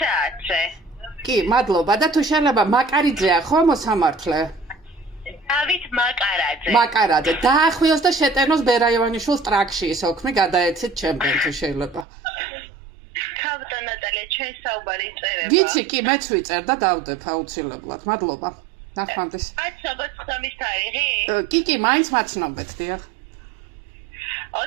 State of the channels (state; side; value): drops out; left; at 12.1 s